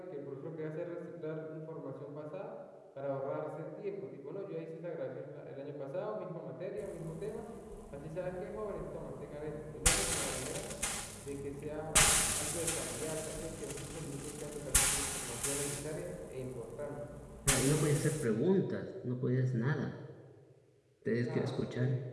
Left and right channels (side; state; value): both; identical; correlation 1.00